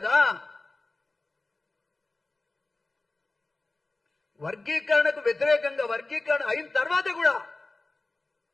వర్గీకరణకు వ్యతిరేకంగా, వర్గీకరణ అయిన తర్వాత కూడా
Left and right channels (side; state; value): right; quieter; 3.2 dB